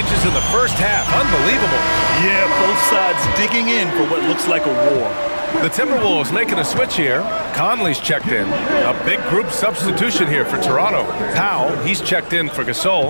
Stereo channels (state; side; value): inverted; both; correlation -1.00